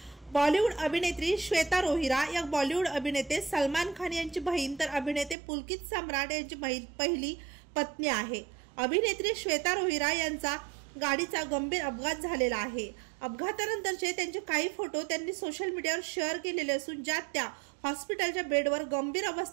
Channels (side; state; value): left; drops out; at 5.4 s